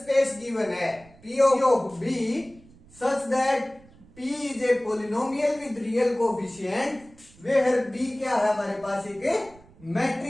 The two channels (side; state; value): right; noise; rumble, 25 dB below the sound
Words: given है P of B such that P is a polynomial with real coefficient where B क्या है? हमारे पास एक